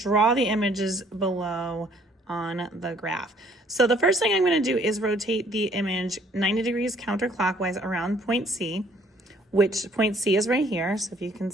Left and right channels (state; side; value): normal; both; correlation 0.60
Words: the images below on the graph. So the first thing I'm going to do is rotate the image 90 degrees counterclockwise around point C, which point C is right here. So if you can